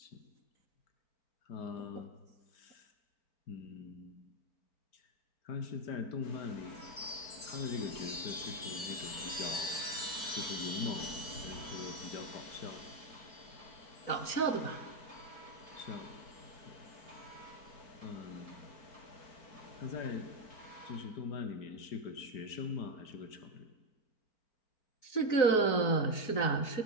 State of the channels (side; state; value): right; late; 4.4 ms